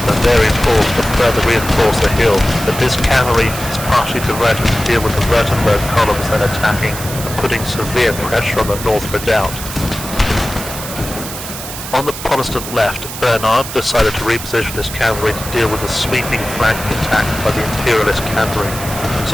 the Bavarian force to further reinforce the hill, but this cavalry is partially diverted to deal with the Württemberg columns then attacking and putting severe pressure on the north redoubt. On the Protestant left, Bernhard decided to reposition his cavalry to deal with the sweeping flanking attack by the Imperialist cavalry,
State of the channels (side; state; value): right; noise; hiss, 9 dB below the sound